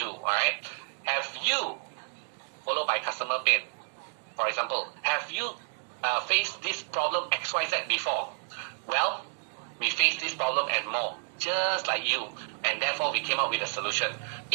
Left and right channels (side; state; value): left; silent; 58 dB below the other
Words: alright? Have you, followed by customer pain, for example, have you faced this problem XYZ before? Well, we face this problem and more, just like you, and therefore we came up with a solution.